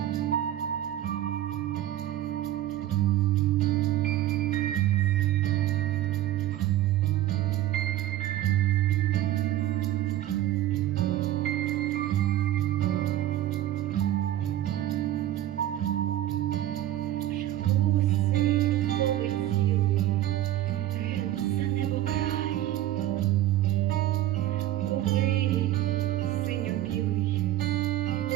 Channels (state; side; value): quieter; left; 13.5 dB